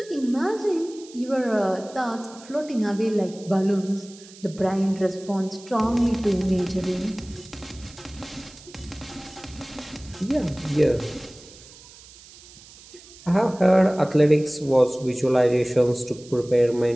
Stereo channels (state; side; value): noise; right; hiss, 21 dB below the sound